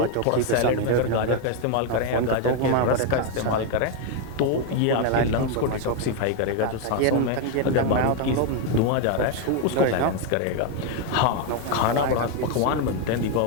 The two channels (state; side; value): different; both; correlation 0.01